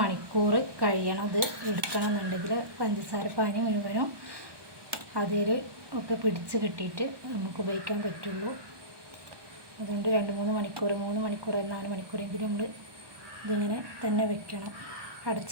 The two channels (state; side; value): late; left; 1.2 ms